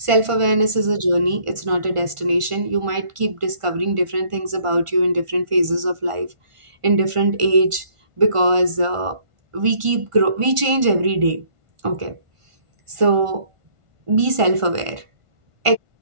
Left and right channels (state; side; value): late; left; 1.5 ms